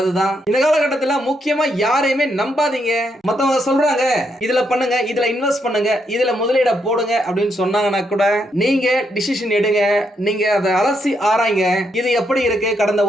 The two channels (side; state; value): both; normal; correlation 0.78